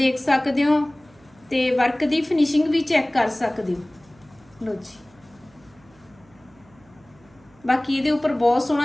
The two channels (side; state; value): right; noise; hum, 29 dB below the sound